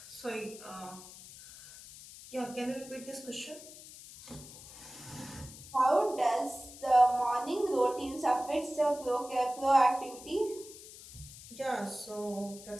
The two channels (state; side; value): noise; left; hiss, 16 dB below the sound